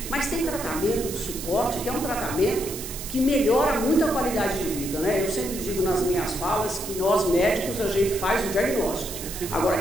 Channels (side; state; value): right; noise; hiss, 9 dB below the sound